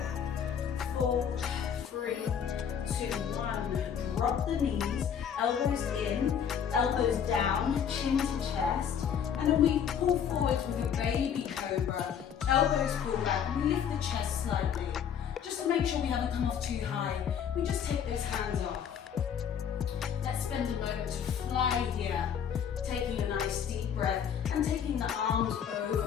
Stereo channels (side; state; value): right; quieter; 8.1 dB